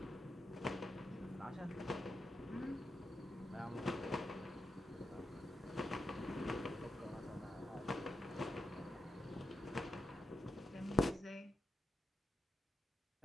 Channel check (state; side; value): normal; both; correlation 0.87